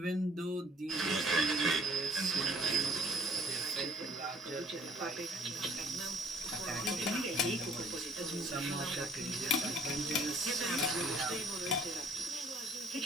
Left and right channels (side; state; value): both; normal; correlation 0.60